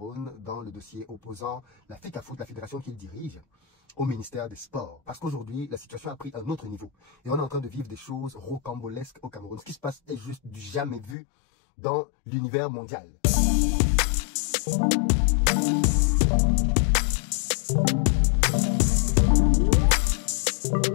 dans le dossier opposant la FECAFOOT, la fédération qu'il dirige, au ministère des Sports. Parce qu'aujourd'hui, la situation a pris un autre niveau. Et on est en train de vivre des choses rocambolesques au Cameroun. Ce qui se passe est juste du jamais vu dans l'univers mondial.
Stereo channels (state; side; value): drops out; right; at 11.2 s